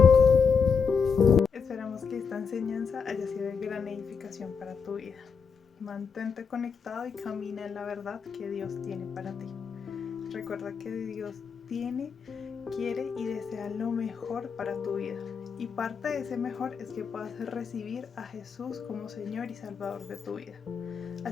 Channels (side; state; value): right; quieter; 5.9 dB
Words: Esperamos que esta enseñanza haya sido de gran edificación para tu vida. Mantente conectado y camina en la verdad que Dios tiene para ti. Recuerda que Dios tiene, quiere y desea lo mejor para tu vida. Y parte de ese mejor es que puedas recibir a Jesús como Señor y Salvador de tu vida.